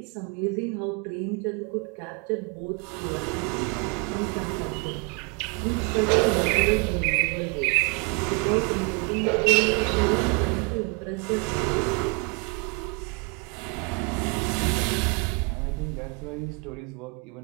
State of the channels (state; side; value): quieter; left; 32.8 dB